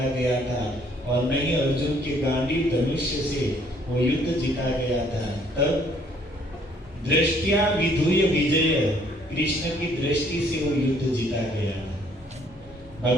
गया था और न ही अर्जुन के गांडीव धनुष्य से वो युद्ध जीता गया था। तब दृष्टिया विधुय विजय, कृष्ण की दृष्टि से वो युद्ध जीता गया।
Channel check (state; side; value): normal; both; correlation 0.63